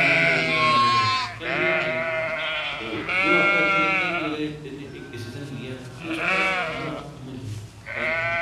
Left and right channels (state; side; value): identical; both; correlation 1.00